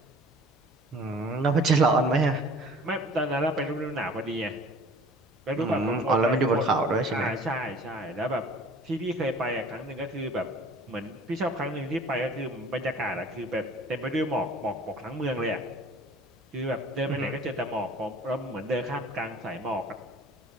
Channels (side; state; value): both; normal; correlation 0.48